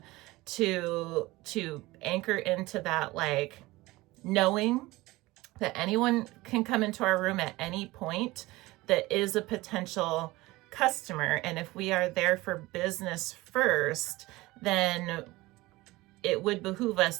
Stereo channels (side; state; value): left; quieter; 20.0 dB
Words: to anchor into that, like knowing that anyone can come into our room at any point that is a potential customer. And if we are there for business first, then it would behoove us